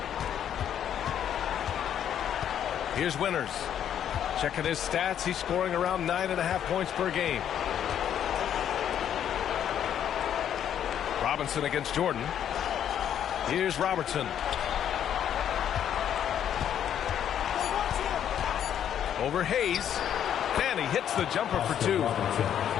Here's Winters. Checking his stats, he's scoring around 9.5 points per game. Robinson against Jordan. Here's Robertson. Over Hayes. Fanny hits the jumper for 2.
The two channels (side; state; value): right; quieter; 9.7 dB